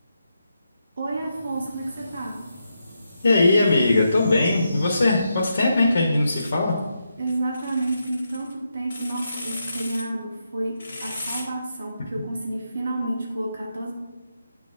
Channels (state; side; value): inverted; both; correlation -0.83